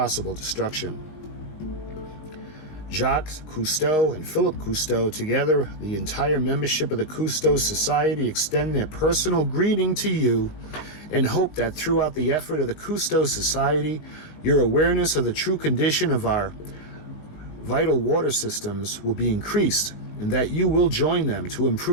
destruction. Jacques Cousteau and Philip Cousteau, together the entire membership of the Cousteau Society, extend their personal greeting to you and hope that throughout the effort of the Cousteau Society, your awareness of the true condition of our vital water systems will be increased, and that you will join them to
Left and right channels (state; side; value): late; right; 19 ms